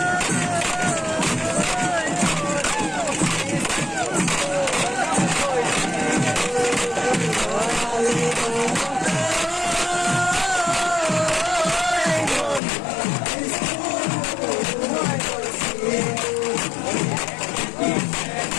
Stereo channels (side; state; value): right; drops out; at 12.6 s